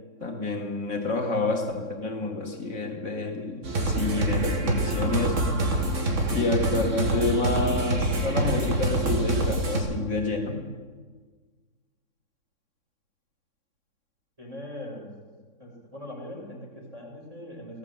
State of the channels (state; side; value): late; left; 3.6 ms